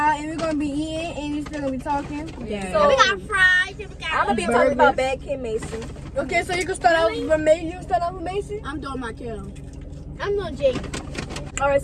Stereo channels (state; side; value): identical; both; correlation 1.00